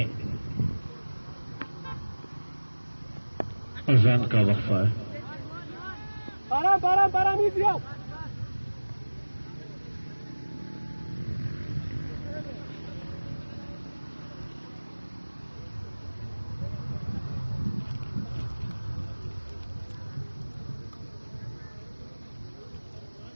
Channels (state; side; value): inverted; both; correlation -1.00